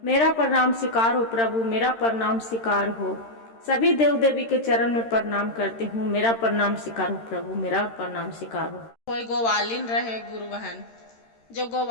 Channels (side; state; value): right; late; 13 ms